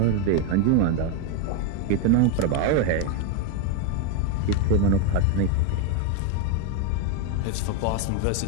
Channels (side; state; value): both; different; correlation 0.02